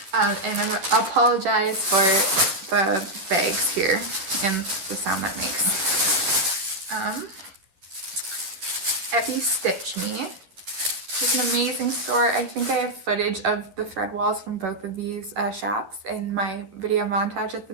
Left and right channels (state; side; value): late; left; 11 ms